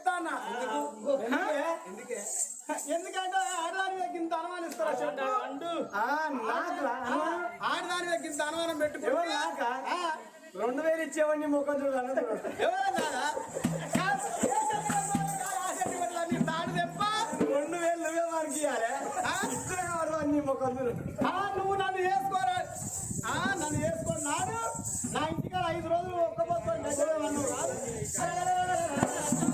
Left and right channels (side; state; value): both; identical; correlation 1.00